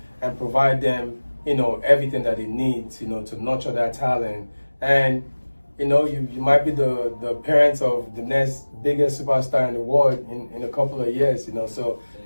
and provide them, you know, everything that they need, you know, to nurture that talent. And, you know, you might be the parents of the next biggest superstar in the world in a couple of years, you know. So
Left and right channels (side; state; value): both; inverted; correlation -1.00